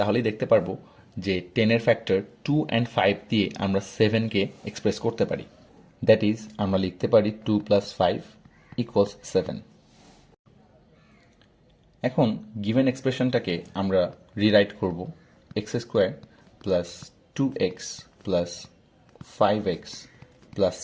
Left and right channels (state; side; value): identical; both; correlation 1.00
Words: দেখতে পারবো যে 10 এর ফ্যাক্টর 2 অ্যান্ড 5 দিয়ে আমরা 7কে এক্সপ্রেস করতে পারি। দ্যাট ইজ আমরা লিখতে পারি 2 + 5 = 7। এখন গিভেন এক্সপ্রেশনটাকে আমরা রিরাইট করব x² + 2x + 5x